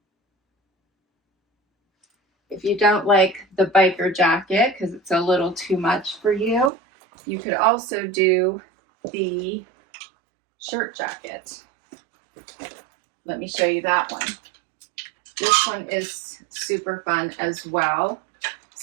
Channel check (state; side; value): drops out; left; at 6.7 s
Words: If you don't like the biker jacket because it's a little too much for you, you could also do the shirt jacket. Let me show you that one. This one is super fun as well.